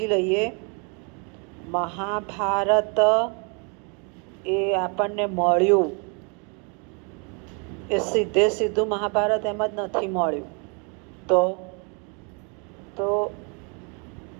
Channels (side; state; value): left; quieter; 35.6 dB